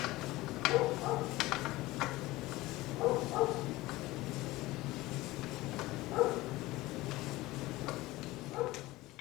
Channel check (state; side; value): quieter; right; 19.0 dB